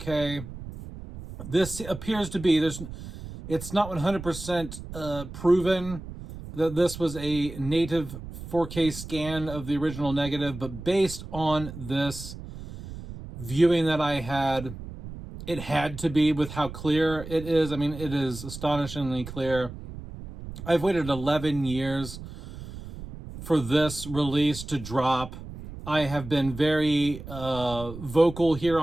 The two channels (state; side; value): noise; right; rumble, 12 dB below the sound